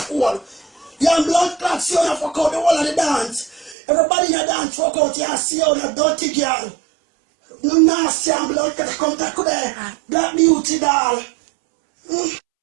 hole. You blood clot. See you now fuck out the whole of the dance. Everybody in the dance fuck out. You see you now dirty girl. No nasty and blood clot. Come to there. Black beauty doll.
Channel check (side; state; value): left; drops out; at 3.8 s